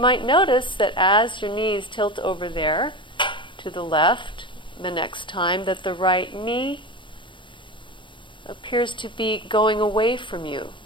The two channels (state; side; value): late; right; 0.24 ms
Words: notice that as your knees tilt over there to the left, the next time, that the right knee appears to be going away from you,